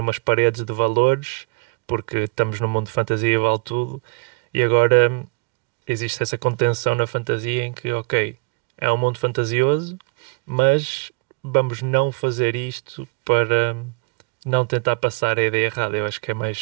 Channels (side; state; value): left; quieter; 33.3 dB